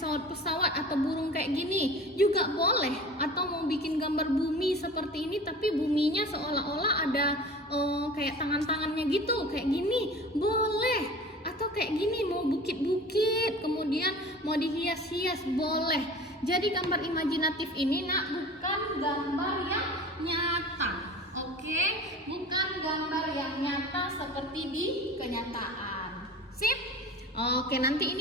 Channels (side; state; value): both; normal; correlation 0.39